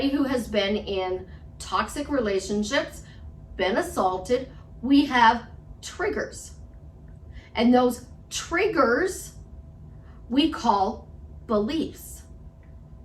who has been in toxic relationships, been assaulted, we have triggers. And those triggers we call beliefs.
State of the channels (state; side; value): identical; both; correlation 1.00